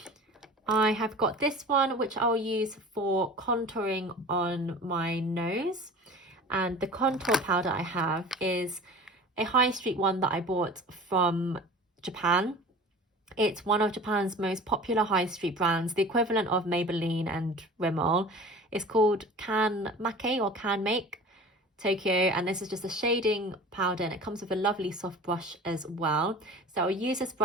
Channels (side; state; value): both; normal; correlation 0.39